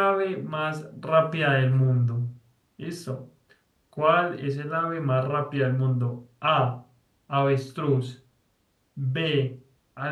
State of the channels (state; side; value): identical; both; correlation 1.00